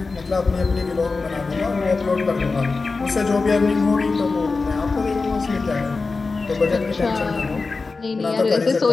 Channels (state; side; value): quieter; right; 4.1 dB